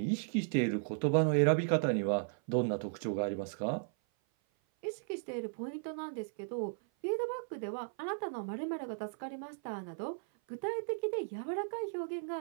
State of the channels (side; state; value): left; silent; 54 dB below the other